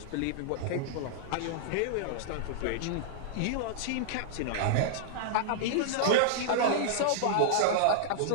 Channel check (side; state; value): both; different; correlation -0.02